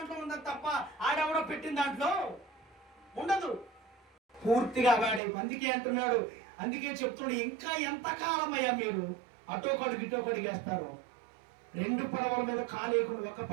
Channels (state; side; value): drops out; left; at 5.2 s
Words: ఉంది తప్ప ఆడెవడో పెట్టిన దాంట్లో ఉండదు. పూర్తిగా వాడే. అందుకే అంటున్నాడు, అందుకే చెప్తున్నాడు, ఇంకా ఎంతకాలం అయ్యా మీరు అటోకడికి ఇటోకడికి వేస్తారు. 2 పడవల మీద కాలేయకుండా ఒక